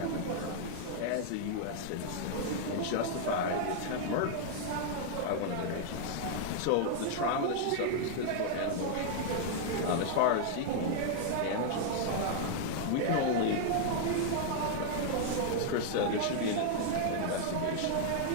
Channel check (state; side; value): different; both; correlation -0.01